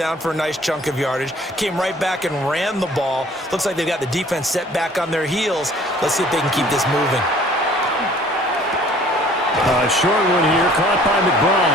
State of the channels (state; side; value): normal; both; correlation 0.54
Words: for a nice chunk of yardage. Came right back and ran the ball. Looks like they've got the defense set back on their heels. Let's see if they can keep this moving. A short one here, caught by